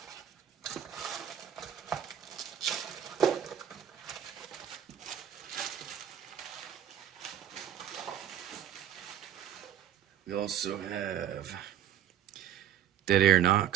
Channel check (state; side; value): quieter; left; 10.1 dB